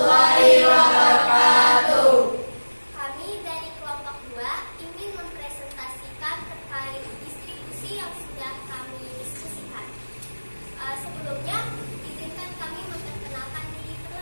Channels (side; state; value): both; inverted; correlation -1.00